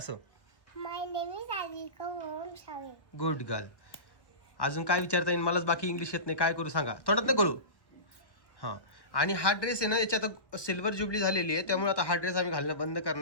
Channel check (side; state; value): right; late; 1.2 ms